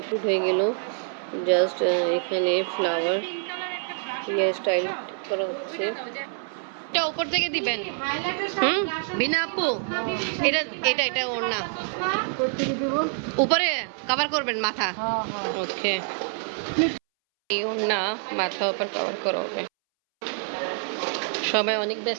হয়ে গেল। জাস্ট এখানে ফ্লাওয়ার হেয়ার স্টাইল করা হচ্ছে। এটা উপর থেকে দিবেন। বিনা আপু, এটা এটা এটা ওর না, উপরে কভার করবেন মাথা। ওকে, এই ওর না, মাথা উপর কভার করা হবে। সবাই অনেক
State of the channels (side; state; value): left; silent; 61 dB below the other